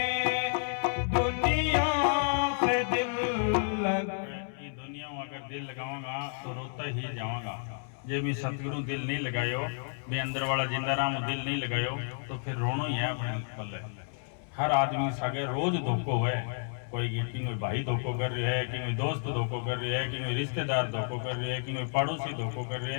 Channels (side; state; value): right; silent; 57 dB below the other